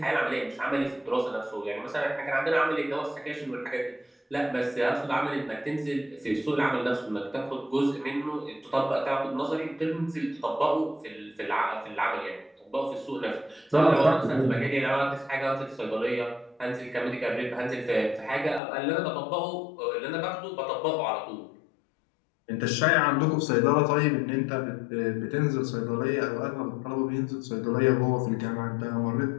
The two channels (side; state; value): right; drops out; at 18.6 s